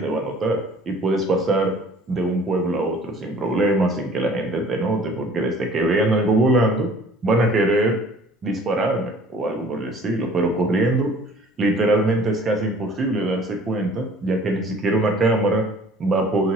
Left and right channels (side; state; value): both; normal; correlation 0.51